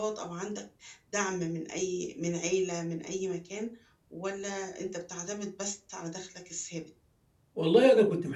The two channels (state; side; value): identical; both; correlation 1.00